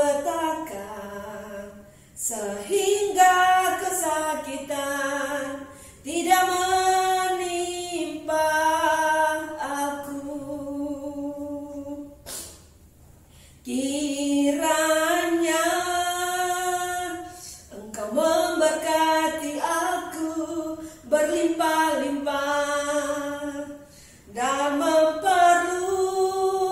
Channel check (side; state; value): both; identical; correlation 1.00